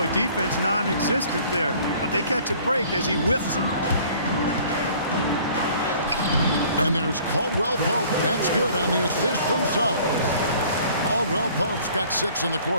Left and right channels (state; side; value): inverted; both; correlation -0.53